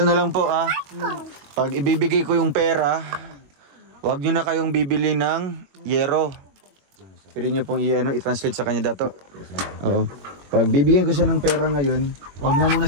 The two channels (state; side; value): late; left; 21 ms